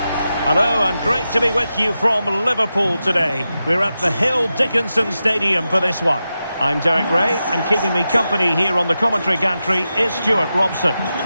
Hello and great to be with you from Liverpool today. We're at the Hill Dickinson Stadium for this one. I'm Derek Ray, and keeping me company here on the commentary gantry is Stuart Robson.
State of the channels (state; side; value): inverted; both; correlation -0.90